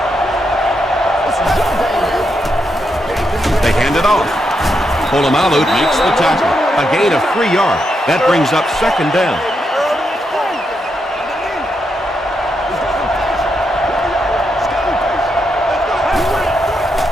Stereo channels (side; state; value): both; normal; correlation 0.82